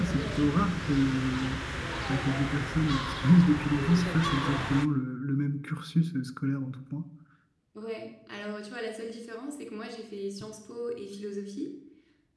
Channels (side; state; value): both; identical; correlation 1.00